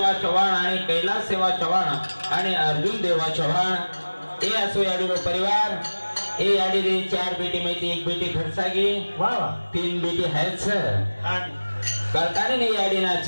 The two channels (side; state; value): both; inverted; correlation -1.00